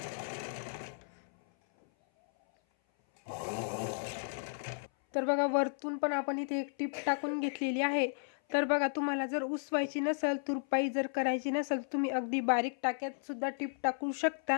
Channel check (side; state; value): right; silent; 55 dB below the other